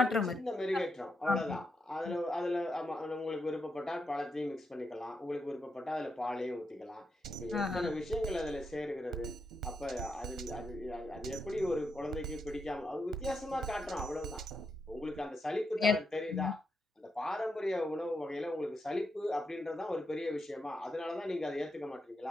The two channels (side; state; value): both; normal; correlation 0.83